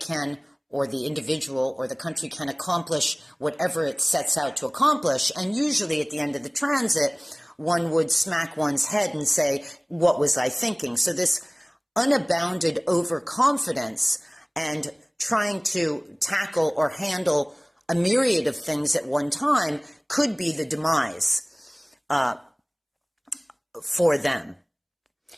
or the individual or the country can accomplish whatever it sets out to accomplish. And usually at the end of the transit, one would smack one's head and say, what was I thinking? So this unabounded overconfidence and trying to tackle or handle a myriad of things at one time could be the demise for them.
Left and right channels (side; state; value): both; identical; correlation 1.00